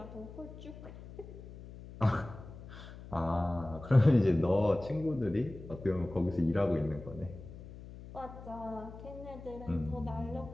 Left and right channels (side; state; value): left; noise; hum, 14 dB below the sound